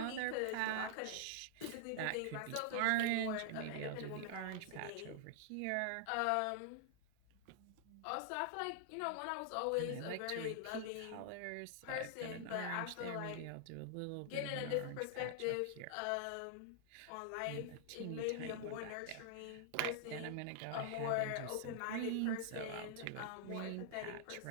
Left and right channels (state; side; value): different; both; correlation -0.01